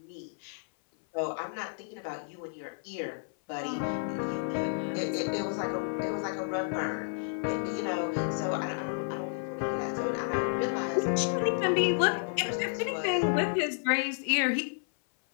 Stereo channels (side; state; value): right; silent; 57 dB below the other